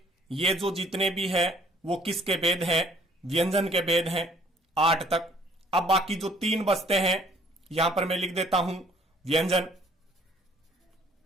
ये जो जितने भी है वो किसके भेद हैं, व्यंजन के भेद हैं 8 तक। अब बाकी जो 3 बचते हैं यहां पर मैं लिख देता हूं व्यंजन,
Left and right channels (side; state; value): both; normal; correlation 0.59